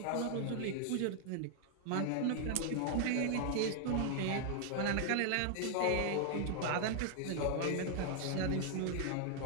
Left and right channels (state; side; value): different; both; correlation 0.00